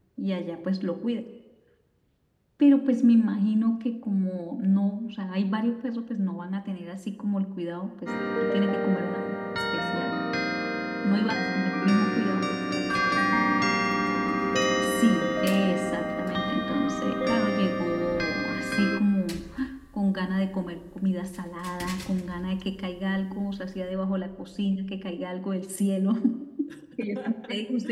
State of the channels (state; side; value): identical; both; correlation 1.00